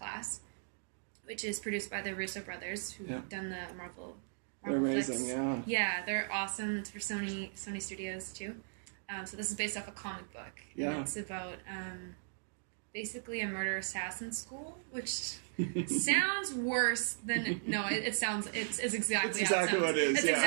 which is produced by the Russo brothers, who've done the Marvel they're amazing, flicks. yeah. Yeah, they're awesome. It's for Sony Studios, too. So this is based off a comic book. Yeah. And it's about basically a murder-assassin school, which sounds worse than... No, it sounds... It's exactly how it sounds. What it is, It's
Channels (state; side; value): silent; left; digital silence